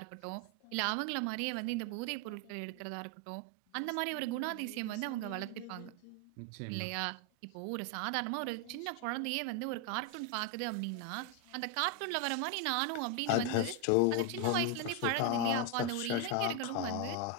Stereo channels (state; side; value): different; both; correlation 0.01